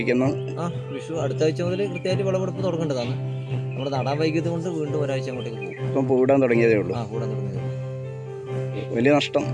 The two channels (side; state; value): both; identical; correlation 1.00